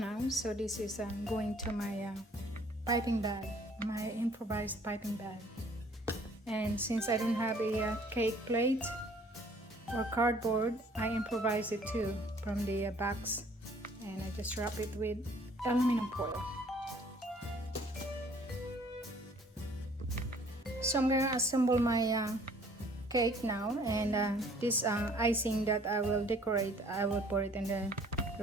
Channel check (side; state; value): both; normal; correlation 0.57